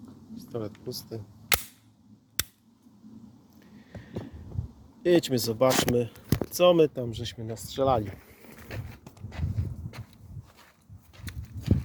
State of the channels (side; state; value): both; identical; correlation 1.00